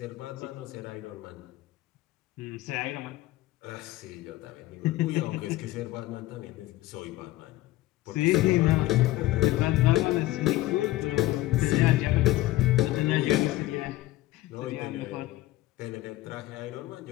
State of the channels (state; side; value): quieter; right; 16.9 dB